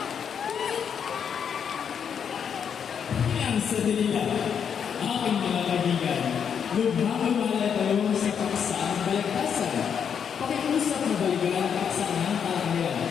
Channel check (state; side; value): quieter; right; 7.5 dB